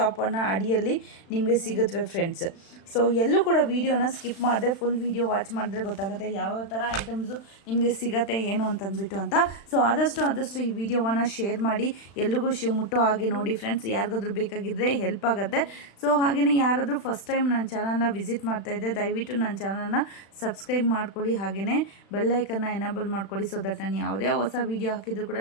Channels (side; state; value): right; late; 36 ms